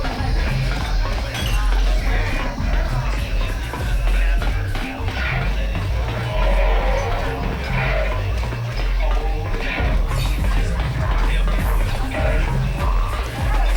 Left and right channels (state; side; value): identical; both; correlation 1.00